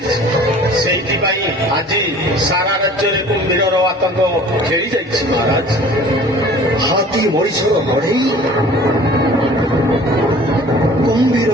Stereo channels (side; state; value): both; normal; correlation 0.47